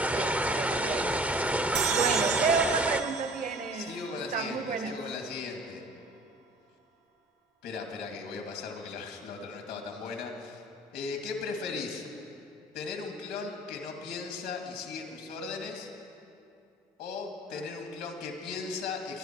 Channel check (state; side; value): normal; both; correlation 0.47